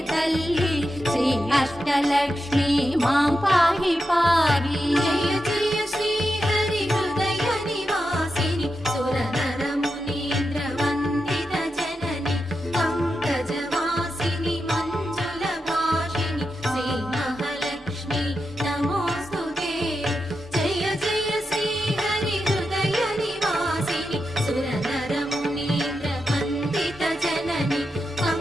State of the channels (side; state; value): both; normal; correlation 0.88